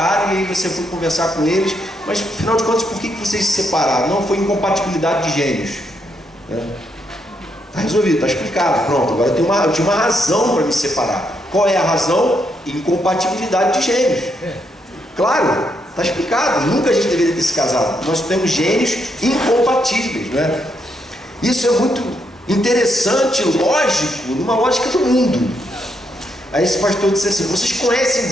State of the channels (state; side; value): normal; both; correlation 0.78